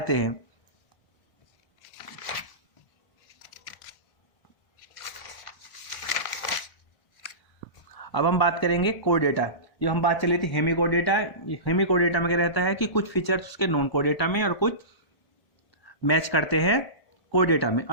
हैं। अब हम बात करेंगे कोडेटा। ये हम बात चली थी हेमिकोडेटा। हेमिकोडेटा में क्या रहता है कि कुछ फीचर्स उसके नॉन कोडेटा में और कुछ मैच करते हैं कोडेटा में।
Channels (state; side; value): late; right; 1.0 ms